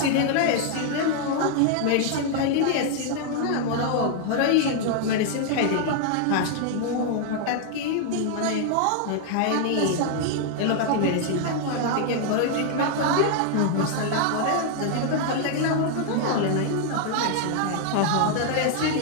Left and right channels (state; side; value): different; both; correlation 0.00